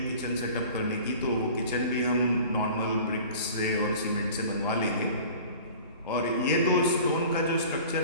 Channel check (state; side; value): inverted; both; correlation -0.43